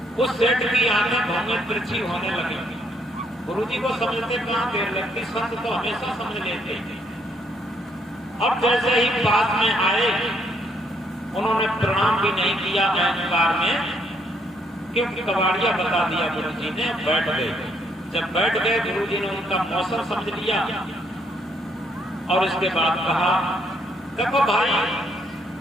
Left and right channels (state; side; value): normal; both; correlation 0.71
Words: उस सेठ की आंखें भौंगे तिरछी होने लगी। गुरु जी को समझते कहां देर लगती, संत तो हमेशा समझ लेते। अब जैसे ही पास में आए उन्होंने प्रणाम भी नहीं किया अहंकार में, क्योंकि कबाड़िया बता दिया गुरु जी ने। बैठ गए। जब बैठ गए गुरु जी ने उनका मौसम समझ लिया और इसके बाद कहा, देखो भाई,